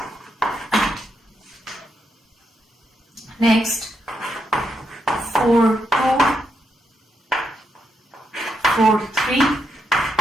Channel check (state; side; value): normal; both; correlation 0.80